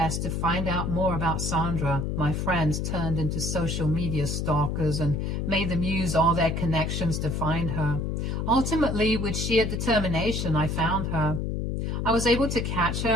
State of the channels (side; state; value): left; noise; hum, 1 dB below the sound